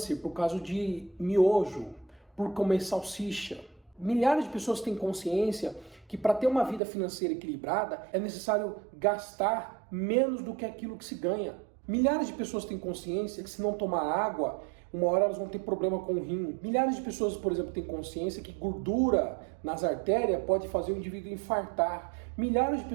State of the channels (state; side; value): drops out; left; at 6.8 s